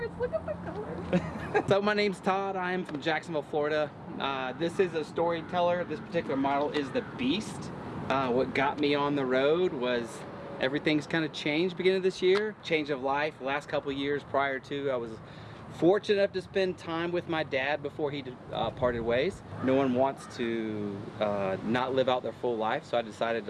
Look at the colors. So my name's Todd. I am from Jacksonville, Florida. This is a Storyteller. This particular model is the Beast. What got me on the road was everything's kind of changed beginning of this year. Change of life. The last couple of years prior to, I was fortunate enough to spend time with my dad before he parted ways. No one wants to not live out their full life, so I decided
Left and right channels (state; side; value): identical; both; correlation 1.00